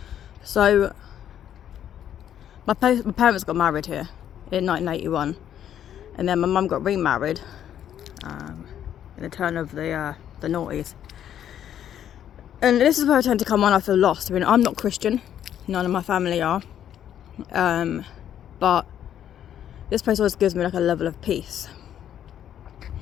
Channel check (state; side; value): quieter; right; 10.2 dB